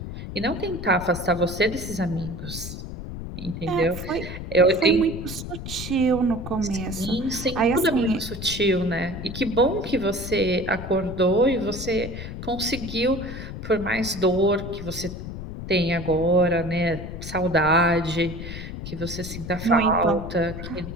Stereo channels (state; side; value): noise; left; rumble, 9 dB below the sound